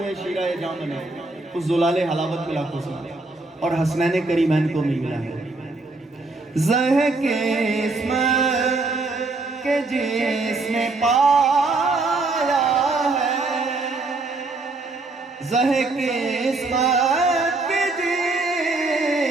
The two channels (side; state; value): left; quieter; 3.4 dB